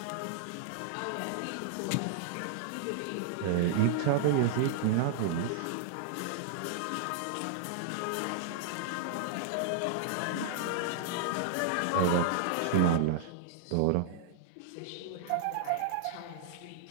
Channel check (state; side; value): different; both; correlation -0.01